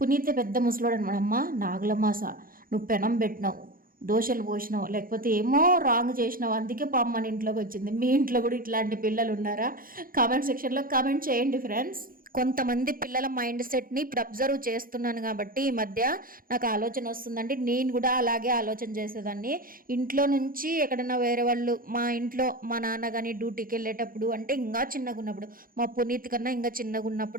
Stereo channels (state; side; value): late; left; 0.41 ms